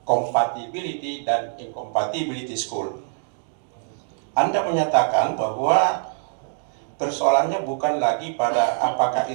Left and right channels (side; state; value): left; silent; digital silence